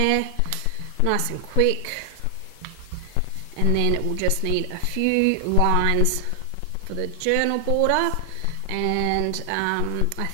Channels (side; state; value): both; different; correlation 0.00